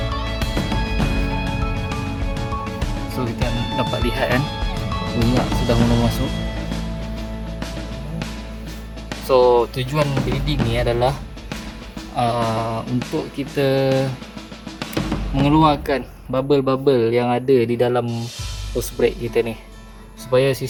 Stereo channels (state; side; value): identical; both; correlation 1.00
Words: So kita dapat lihat kan, minyak sudah mula masuk. So tujuan bleeding ni adalah untuk kita mengeluarkan bubble-bubble yang ada di dalam hose brake kita ni, supaya